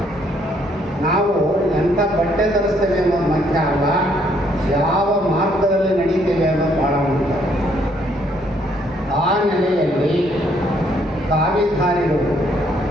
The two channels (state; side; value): normal; both; correlation 0.68